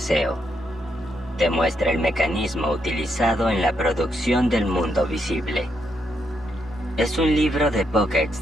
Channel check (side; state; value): both; normal; correlation 0.79